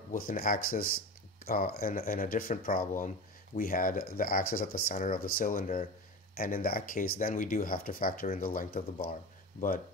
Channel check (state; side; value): normal; both; correlation 0.27